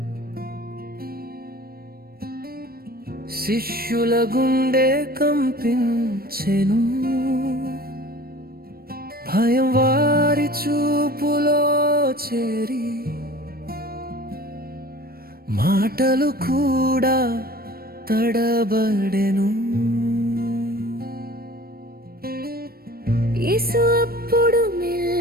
శిష్యుల గుండె కంపించెను. భయం వారి చూపులో చేరి మాటలు కూడా తడబడెను. యేసు అప్పుడు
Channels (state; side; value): late; left; 0.44 ms